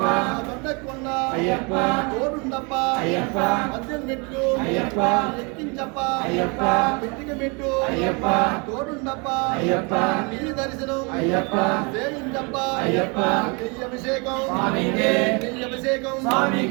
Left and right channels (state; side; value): quieter; left; 31.4 dB